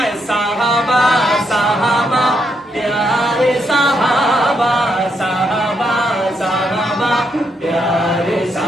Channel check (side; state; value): both; normal; correlation 0.78